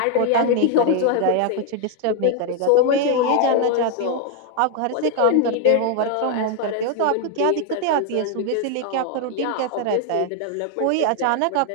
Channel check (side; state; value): both; different; correlation 0.00